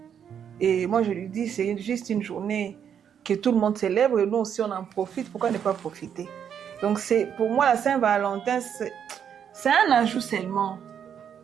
Et moi, je lui dis, c'est juste une journée que tout le monde célèbre et nous aussi, on en profite. Pourquoi ne pas profiter? Donc, pour moi, la Saint-Valentin, c'est un ajout seulement.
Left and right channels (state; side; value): quieter; left; 8.3 dB